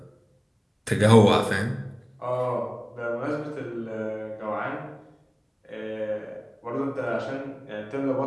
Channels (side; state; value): both; identical; correlation 1.00